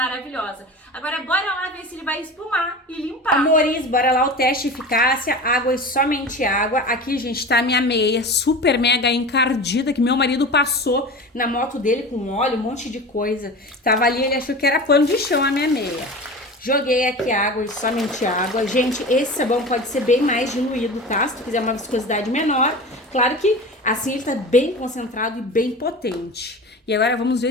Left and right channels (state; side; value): normal; both; correlation 0.32